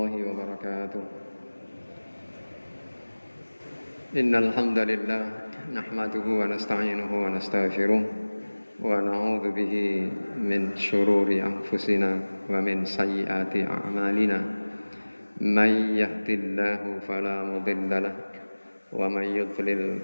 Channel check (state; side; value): inverted; both; correlation -1.00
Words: wabarakatuh. Innal hamdalillah nahmaduhu wa nasta'inuhu wa nastaghfiruh wa na'udzu bihi min shururi anfusina wa min sayyiati a'malina. May yahdihillahu fala mudilla lahu wa may